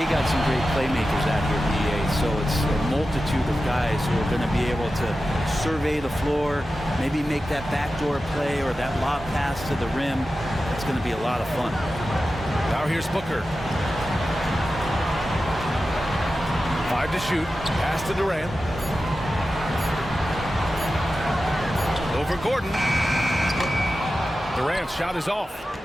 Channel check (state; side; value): normal; both; correlation 0.93